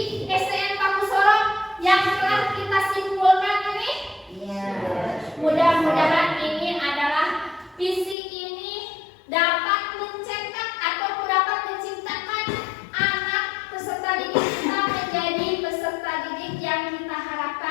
SDN Pak Sorok yang telah kita simpulkan ini? Iya. Mudah-mudahan ini adalah visi ini dapat mencetak atau dapat menciptakan anak peserta didik kita menjadi peserta didik yang kita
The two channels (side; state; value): right; drops out; at 8.2 s